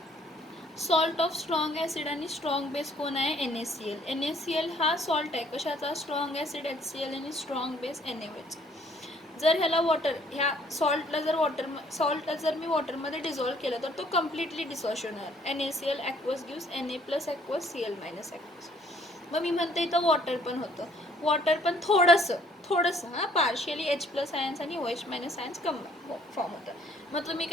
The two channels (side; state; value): both; normal; correlation 0.61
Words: सॉल्ट ऑफ स्ट्रॉंग ॲसिड आणि स्ट्रॉंग बेस कोण आहे, NaCl. NaCl हा सॉल्ट आहे कशाचा, स्ट्रॉंग ॲसिड HCl आणि स्ट्रॉंग बेस NaOH. जर ह्याला ह्या सॉल्टला जर मी वॉटरमध्ये डिझॉल्व केलं तर तो कम्प्लिटली डिसॉल्व्ह होणार. NaCl aqueous gives Na plus aqueous Cl minus aqueous. मग मी म्हणते इथं वॉटर पण होतं, वॉटर पण थोडंसं पार्शियली H प्लस आयन्स आणि OH मायनस आयन्स फॉर्म होतं. मग तुम्ही